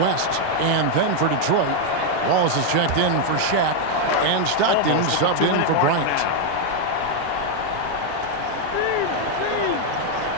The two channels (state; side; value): different; both; correlation 0.01